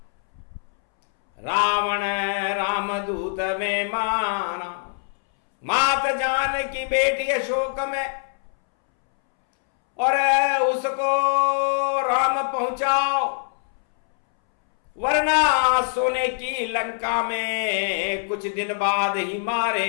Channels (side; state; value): right; silent; 63 dB below the other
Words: रावण रामदूत में माना मात जान की बेटी अशोक में और उसको राम पहुंचाओ वरना सोने की लंका में कुछ दिन बाद ही